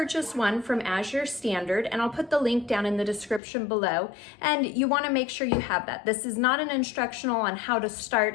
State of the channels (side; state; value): right; drops out; at 3.4 s